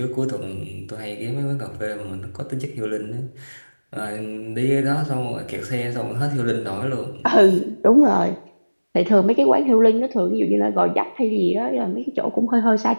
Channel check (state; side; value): inverted; both; correlation -1.00